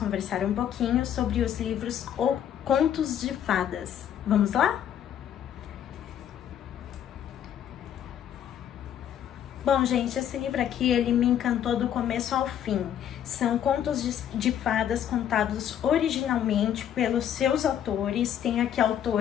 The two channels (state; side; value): quieter; right; 9.9 dB